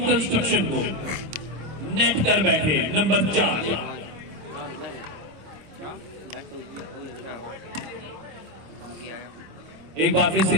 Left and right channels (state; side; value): late; left; 26 ms